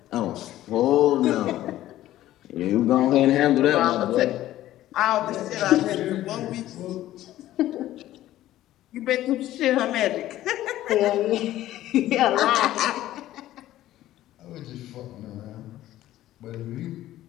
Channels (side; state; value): right; quieter; 14.2 dB